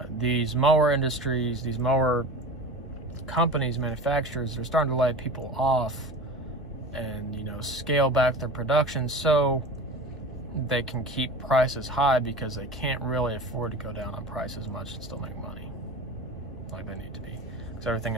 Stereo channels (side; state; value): both; normal; correlation 0.34